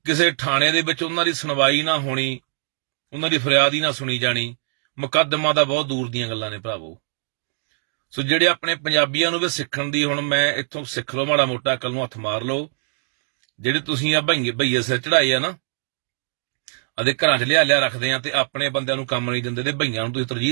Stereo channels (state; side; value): silent; left; digital silence